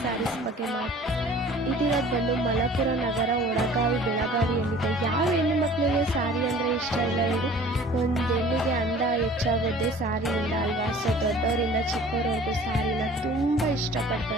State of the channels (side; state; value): both; normal; correlation 0.48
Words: ಸ್ಯಾರೀಸ್ ಬಗ್ಗೆ ಇದಿರೋದು ಬಂದು ಮಲಪುರ ನಗರ, ಒಳಗಾವಿ, ಬೆಳಗಾವಿಯಲ್ಲಿದೆ. ಯಾವ ಹೆಣ್ಣು ಮಕ್ಕಳಿಗೆ ಸ್ಯಾರಿ ಅಂದರೆ ಇಷ್ಟ ಇಲ್ಲ ಹೇಳಿ? ಒಂದು ಹೆಣ್ಣಿಗೆ ಅಂದ ಹೆಚ್ಚಾಗೋದೇ ಸ್ಯಾರಿಯಿಂದ ಅಲ್ವಾ? ಸೊ ದೊಡ್ಡವರಿಂದ ಚಿಕ್ಕವರವರೆಗೂ ಸ್ಯಾರಿನ ತುಂಬ